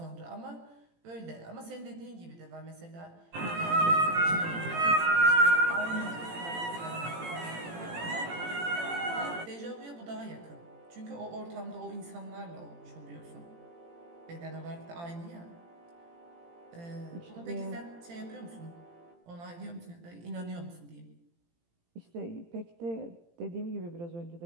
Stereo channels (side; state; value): left; late; 18 ms